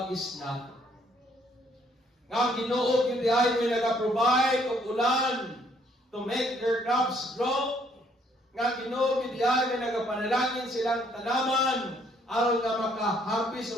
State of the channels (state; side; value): normal; both; correlation 0.66